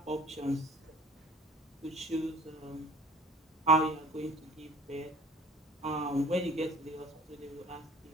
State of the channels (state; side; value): normal; both; correlation 0.47